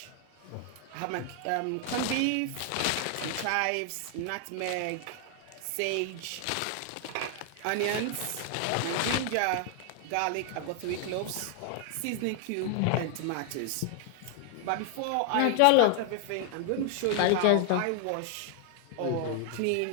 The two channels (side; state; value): both; different; correlation 0.00